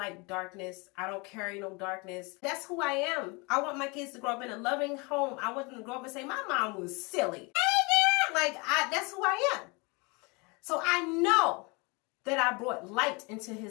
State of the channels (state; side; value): quieter; right; 28.8 dB